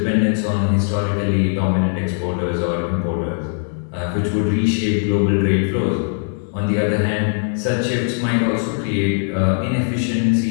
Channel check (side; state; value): right; silent; 66 dB below the other